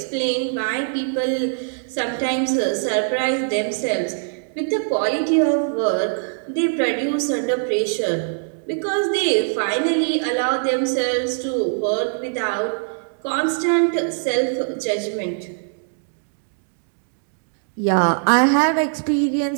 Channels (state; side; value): silent; left; digital silence